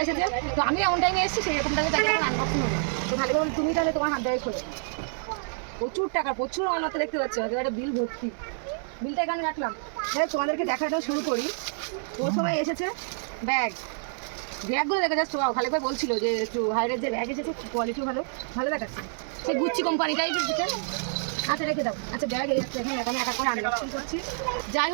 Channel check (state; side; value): silent; left; 60 dB below the other